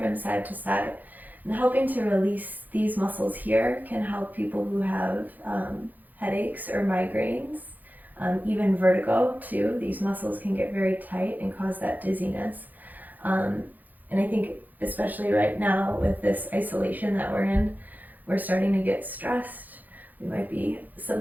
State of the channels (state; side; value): late; left; 0.083 ms